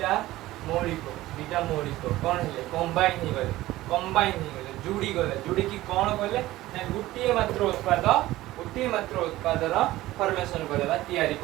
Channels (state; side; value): quieter; left; 16.6 dB